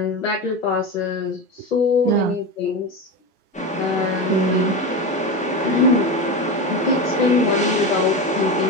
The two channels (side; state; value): both; normal; correlation 0.21